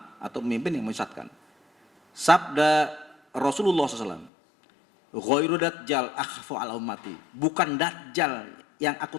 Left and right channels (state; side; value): drops out; right; at 4.3 s